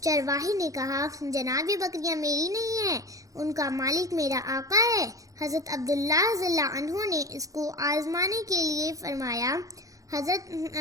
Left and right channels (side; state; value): left; late; 0.16 ms